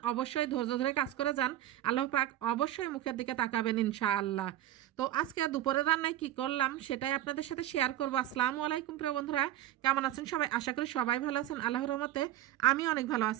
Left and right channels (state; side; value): quieter; left; 13.2 dB